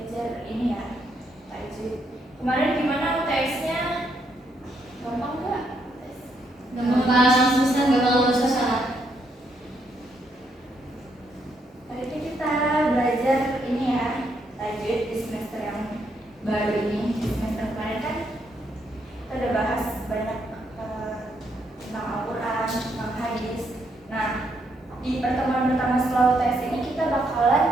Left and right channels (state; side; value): normal; both; correlation 0.76